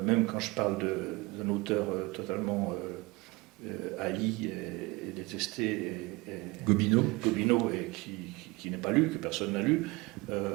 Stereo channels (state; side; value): quieter; left; 24.2 dB